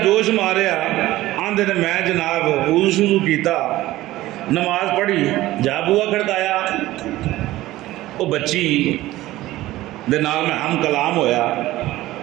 جوش ماریا، آندے نے میں جناب وضو شروع کیتا، نماز پڑھی، جا بوا کھڑکایا، وہ بچی دے نال میں ہم کلام ہویا،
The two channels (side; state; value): left; quieter; 16.6 dB